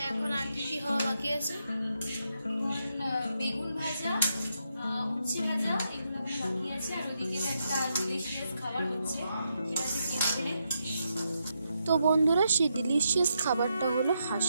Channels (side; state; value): both; inverted; correlation -0.82